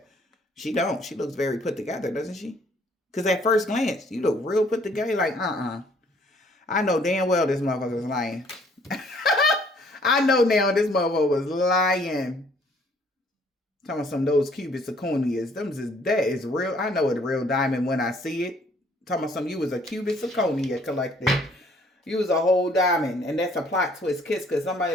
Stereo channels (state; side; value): normal; both; correlation 0.61